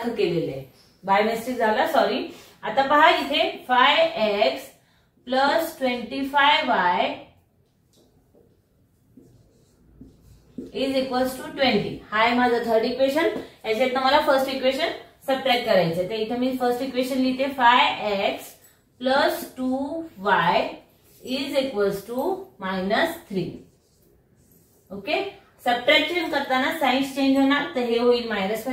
केलेलं आहे. बाय मिस्टेक झाला, सॉरी. आता पहा इथे 5x plus 25y is equals to 20. हा आहे माझं थर्ड इक्वेशन. याच्यातनं मला फर्स्ट इक्वेशन सबट्रॅक्ट करायचं. तर इथे मी फर्स्ट इक्वेशन लिहिते 5x plus 2y is equals to -3. Okay, subtraction करताना साइन्स चेंज होणार, तर हे होईल मायनस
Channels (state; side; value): identical; both; correlation 1.00